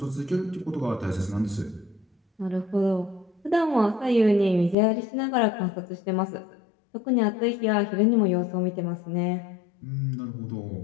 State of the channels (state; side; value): drops out; right; at 4.8 s